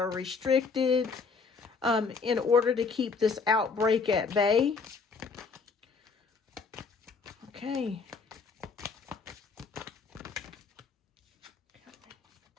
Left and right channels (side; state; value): right; quieter; 4.9 dB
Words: restricted in order to keep this outbreak at bay. Okay.